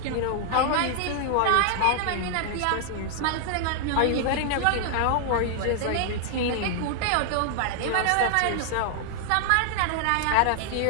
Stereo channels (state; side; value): different; both; correlation 0.00